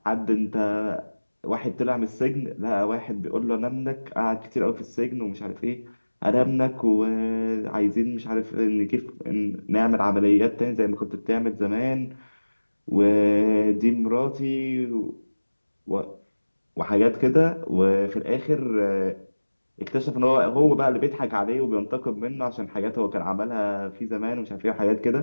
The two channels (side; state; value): both; inverted; correlation -1.00